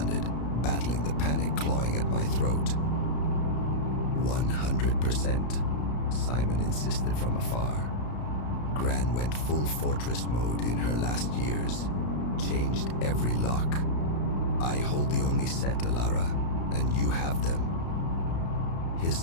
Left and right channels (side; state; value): right; late; 33 ms